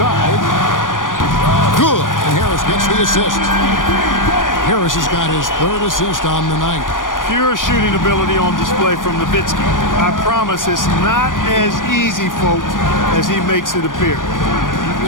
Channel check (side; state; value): right; late; 0.89 ms